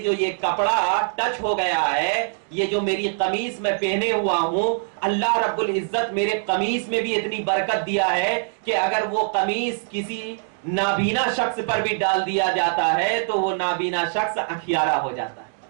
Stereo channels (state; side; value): silent; left; digital silence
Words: جو یہ کپڑا ٹچ ہو گیا ہے، یہ جو میری قمیص میں پہنے ہوا ہوں، اللہ رب العزت میرے قمیص میں بھی اتنی برکت دیا ہے کہ اگر وہ قمیص کسی نابینا شخص پر بھی ڈال دیا جاتا ہے تو وہ نابینا شخص اکھیارا ہو جاتا ہے.